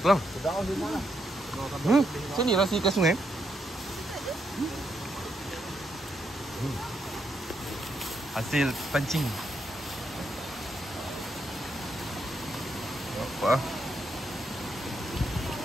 tulang. Sini lah ikan sungai. Hasil pancing. Apa?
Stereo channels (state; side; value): normal; both; correlation 0.79